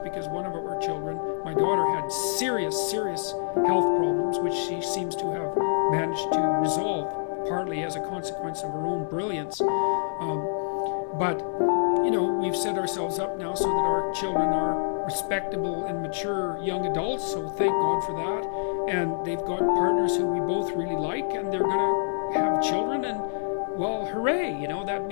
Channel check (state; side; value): silent; right; digital silence